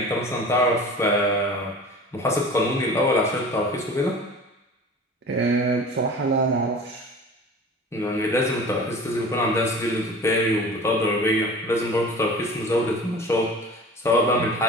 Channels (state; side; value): normal; both; correlation 0.40